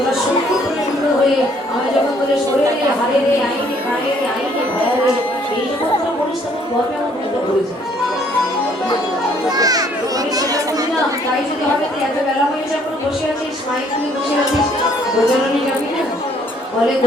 সংকীর্ণ হয়ে আমি যখন তোদের শরীরে হারে রে আইনে কায়ে রে আইনে ভায়া রে এই যখন তোরা বলিস তখন গর্বে আমার মতো হয়ে যায় আমি সেটা বুঝি না তাই যদি হবে তো এত বেলা হয়ে যখন বসে আছিস মাইক নিয়ে বসে আছিস গোচারণে যাবি না বলে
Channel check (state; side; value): normal; both; correlation 0.63